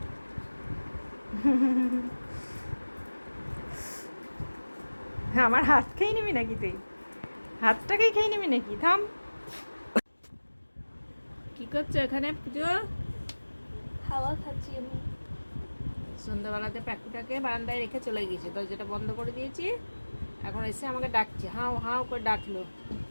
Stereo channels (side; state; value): both; inverted; correlation -1.00